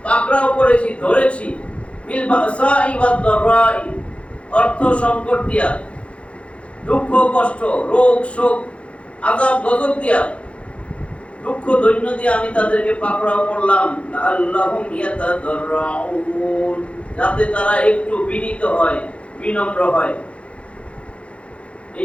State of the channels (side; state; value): right; late; 0.061 ms